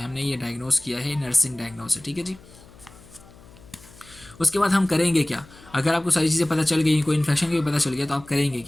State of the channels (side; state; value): left; noise; hum, 23 dB below the sound